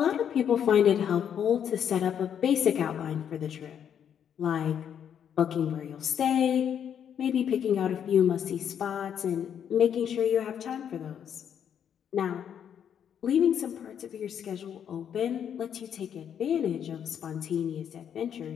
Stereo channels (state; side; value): quieter; right; 8.7 dB